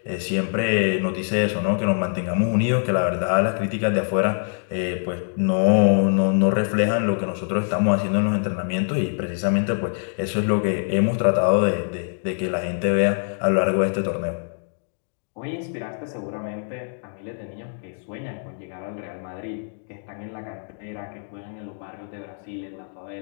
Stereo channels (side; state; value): right; silent; digital silence